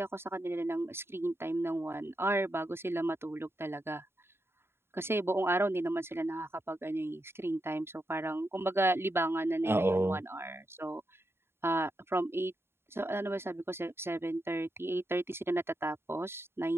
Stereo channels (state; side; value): late; left; 0.11 ms